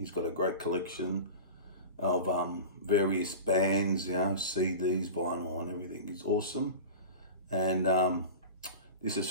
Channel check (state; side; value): inverted; both; correlation -0.32